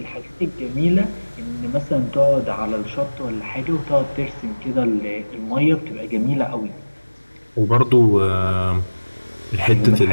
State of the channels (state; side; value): inverted; both; correlation -1.00